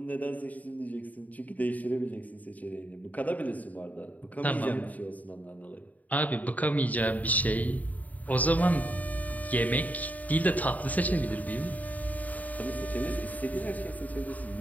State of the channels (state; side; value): late; right; 0.075 ms